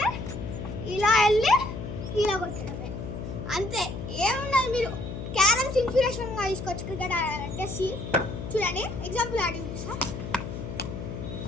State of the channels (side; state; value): left; noise; hum, 7 dB below the sound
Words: ఇలా వెళ్ళి ఇలా కొట్టడమే, అంతే. ఏమున్నది, మీరు క్యారమ్స్ ఇన్స్పిరేషన్గా తీసుకోవచ్చు క్రికెట్ ఆడాలంటే. చూడండి, ఎగ్జాంపుల్ ఆడి చూపిస్తా.